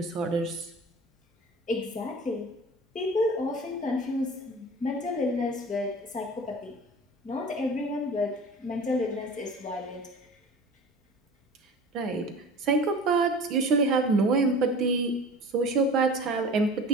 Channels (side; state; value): both; normal; correlation 0.39